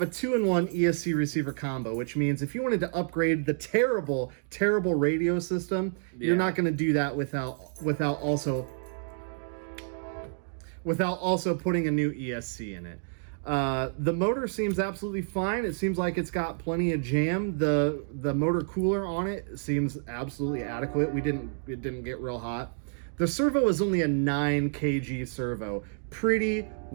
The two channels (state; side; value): silent; left; digital silence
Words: a 2-in-1 ESC receiver combo, which means if you wanted to upgrade the terrible, terrible radio system, you're not going to do that without also putting a new ESC in it. The motor seems absolutely fine. It seems like it's got plenty of jam. The motor cooler on it seems absolutely adequate. It didn't get real hot. The servo is only a 9 kg servo, pretty